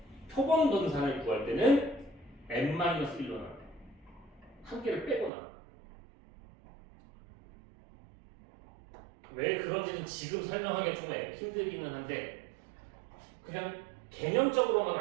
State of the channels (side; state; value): left; drops out; at 5.3 s